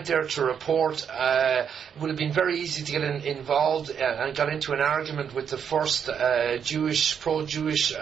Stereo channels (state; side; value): quieter; left; 7.6 dB